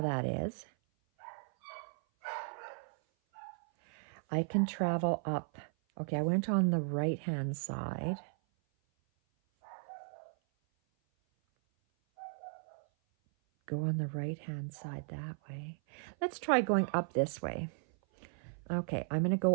that is. I can travel up. Okay, I went on the right-hand side. Go on the right-hand side that way. Let's try going up this way. Okay, I'm going to go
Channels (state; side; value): silent; left; 54 dB below the other